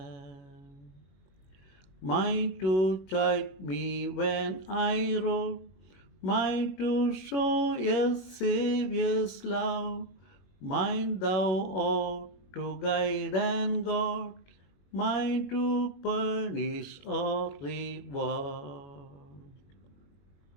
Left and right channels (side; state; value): right; late; 21 ms